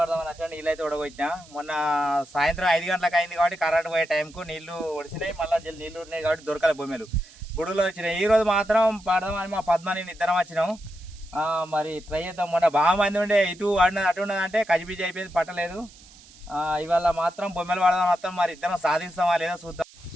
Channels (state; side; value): noise; right; hiss, 23 dB below the sound